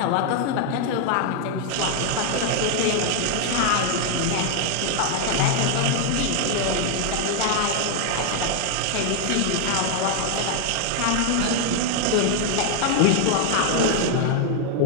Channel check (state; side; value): different; both; correlation 0.00